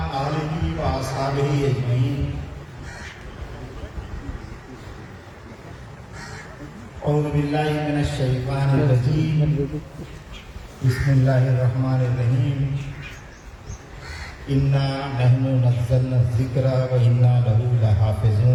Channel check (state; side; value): identical; both; correlation 1.00